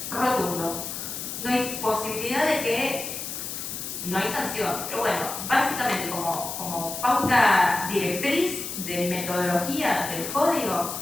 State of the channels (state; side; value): noise; left; hiss, 6 dB below the sound